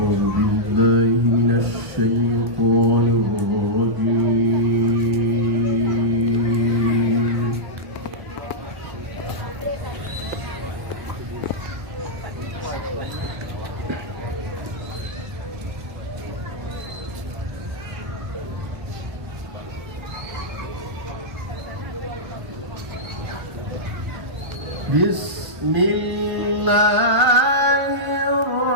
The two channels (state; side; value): late; left; 1.2 ms